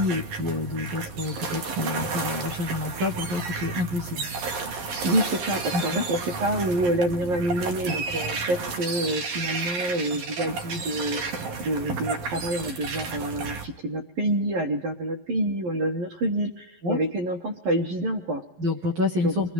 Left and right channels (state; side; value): late; left; 11 ms